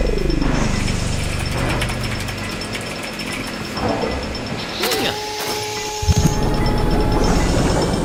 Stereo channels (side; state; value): both; identical; correlation 1.00